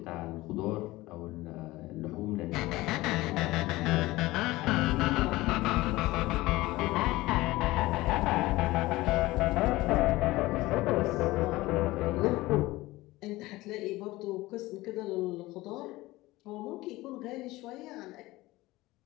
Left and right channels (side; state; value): right; quieter; 19.1 dB